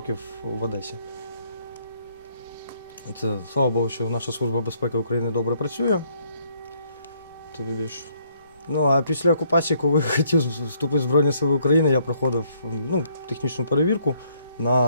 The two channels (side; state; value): both; inverted; correlation -0.68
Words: в Одесі. Це, слава Богу, що наша Служба безпеки України добре працює. Тобі більш. Ну, а після окупації, коли хотів вступити в Збройні Сили України, я проходив ну, технічну перевірку